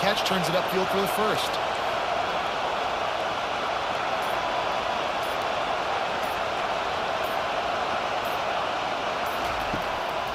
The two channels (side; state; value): both; identical; correlation 1.00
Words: turns it upfield for the first.